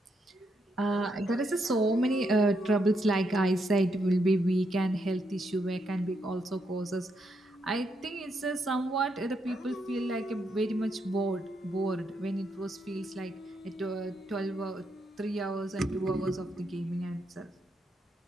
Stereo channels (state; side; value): normal; both; correlation 0.79